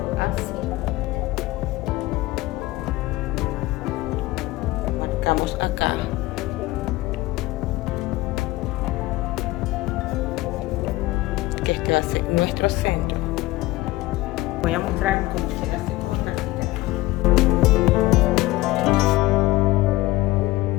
así. Marcamos acá. Que este va a ser nuestro centro. Voy a mostrar cómo se hace con la tira.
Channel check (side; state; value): right; quieter; 18.6 dB